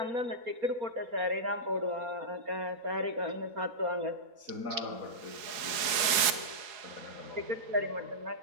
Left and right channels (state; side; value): late; left; 4.7 ms